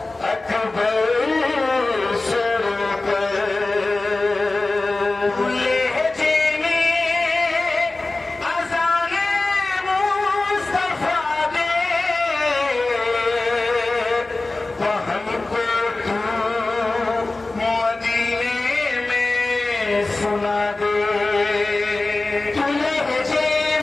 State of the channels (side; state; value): right; quieter; 3.2 dB